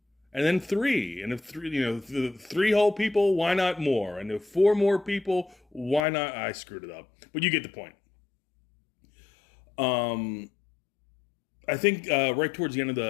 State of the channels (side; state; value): right; drops out; at 6.1 s